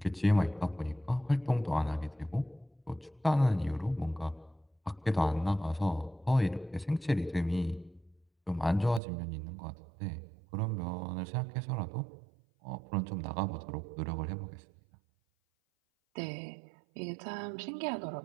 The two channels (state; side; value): drops out; left; at 9.0 s